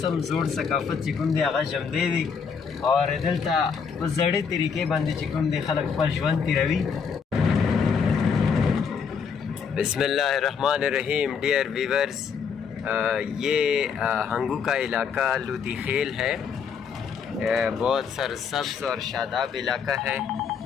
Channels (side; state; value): right; quieter; 6.4 dB